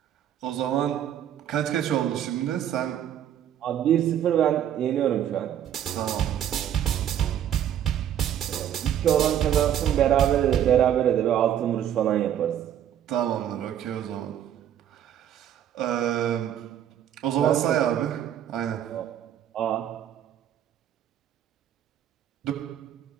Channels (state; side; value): quieter; left; 10.3 dB